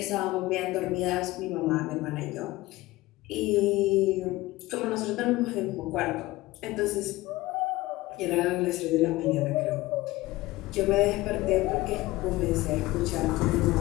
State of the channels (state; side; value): quieter; right; 19.0 dB